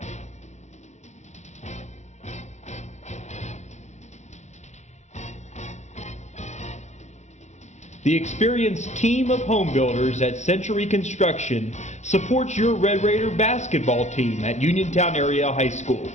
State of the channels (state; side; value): late; right; 0.33 ms